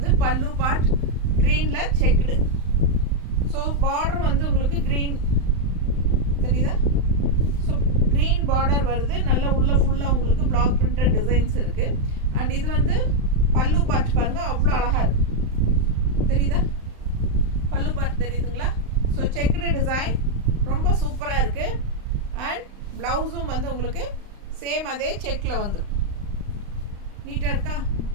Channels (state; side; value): late; left; 35 ms